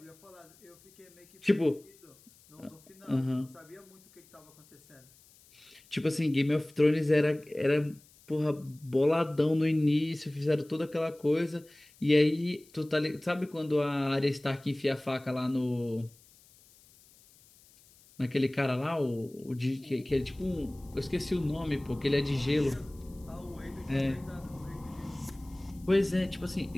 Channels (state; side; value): noise; left; hiss, 27 dB below the sound